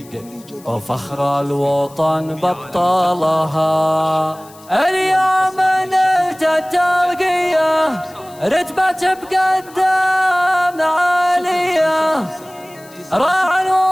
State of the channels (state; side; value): noise; left; hiss, 24 dB below the sound